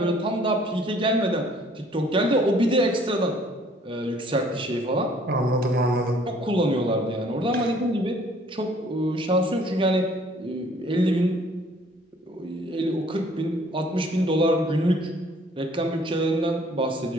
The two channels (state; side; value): normal; both; correlation 0.58